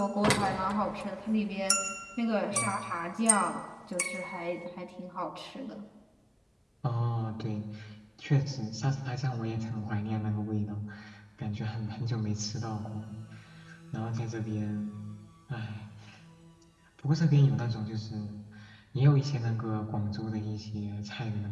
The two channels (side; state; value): both; identical; correlation 1.00